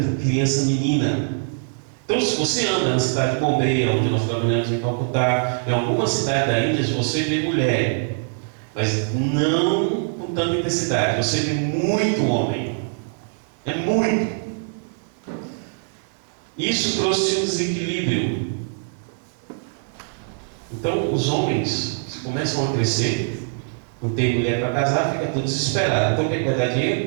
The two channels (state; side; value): silent; left; 64 dB below the other